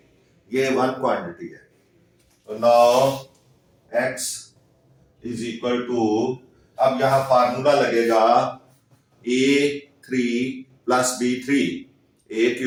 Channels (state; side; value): identical; both; correlation 1.00